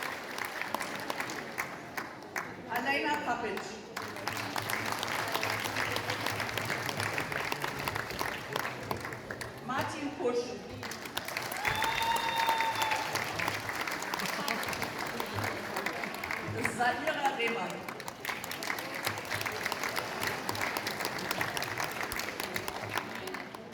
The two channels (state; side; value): identical; both; correlation 1.00